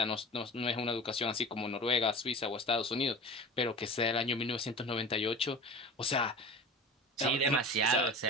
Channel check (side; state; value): both; normal; correlation 0.34